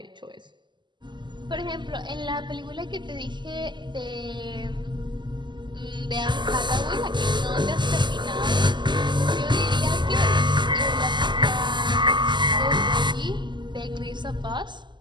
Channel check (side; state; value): left; late; 0.22 ms